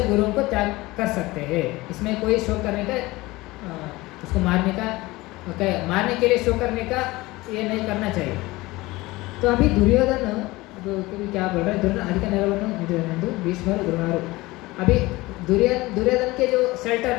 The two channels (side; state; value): right; quieter; 20.5 dB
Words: गुरुओं को त्याग कर सकते हैं। इसमें कोई शो करने का, उसको मारने का, मारने के लिए शो करने का ये नहीं करना चाहिए। तो अभी दुर्योधन क्या बोल रहे हैं, दुर्योधन भीष्म द्रोणादि, अभी दुर्योधन के जो